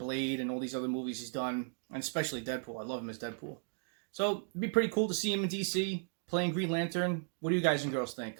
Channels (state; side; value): silent; left; 54 dB below the other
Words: and all these other movies he's done, and especially Deadpool. I love him as Deadpool. So it'd be pretty cool to see him in DC playing Green Lantern. What do you guys and girls think?